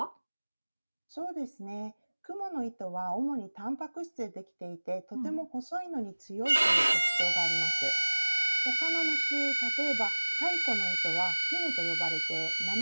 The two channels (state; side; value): inverted; both; correlation -1.00